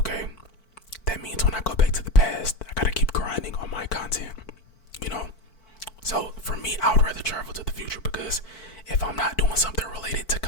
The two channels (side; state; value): right; late; 4.5 ms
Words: that means when I go back to the past, I gotta keep grinding on my content, you know? So for me, I would rather travel to the future, because if I'm not doing something related to